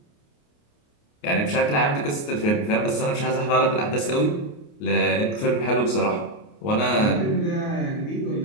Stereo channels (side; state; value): right; late; 29 ms